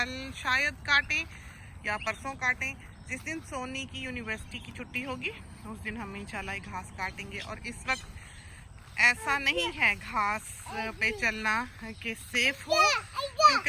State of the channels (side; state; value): both; identical; correlation 1.00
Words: शायद काटें या परसों काटें। जिस दिन सोनी की यूनिवर्सिटी की छुट्टी होगी उस दिन हम इंशाल्लाह घास काटेंगे। और इस वक्त ऐसा नहीं है घास पे चलना कि सेफ हो,